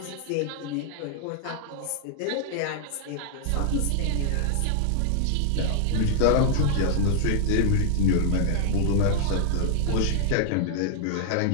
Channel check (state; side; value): different; both; correlation 0.00